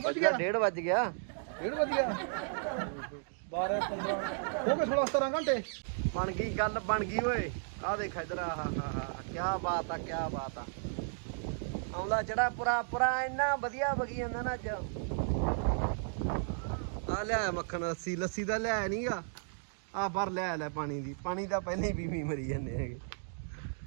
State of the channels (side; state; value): left; silent; digital silence